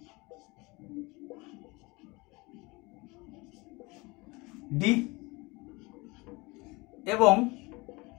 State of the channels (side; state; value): right; quieter; 24.7 dB